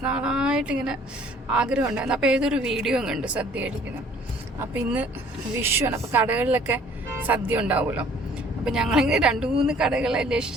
നാളായിട്ട് ഇങ്ങനെ ആഗ്രഹം ഉണ്ടായിരുന്നു. അപ്പോൾ ഏതൊരു വീഡിയോ കണ്ട് സദ്യ കഴിക്കുന്നത്. അപ്പം ഇന്ന് വിഷുവാണ്. അപ്പോൾ കടകളിലൊക്കെ സദ്യ ഉണ്ടാവുമല്ലോ. അപ്പം ഞങ്ങളിങ്ങനെ 2-3 കടകളെ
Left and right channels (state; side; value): normal; both; correlation 0.56